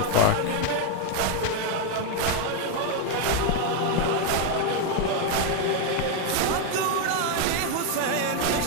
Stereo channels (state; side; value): different; both; correlation 0.01